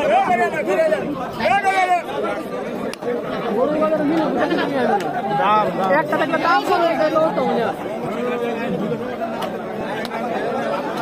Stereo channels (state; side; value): identical; both; correlation 1.00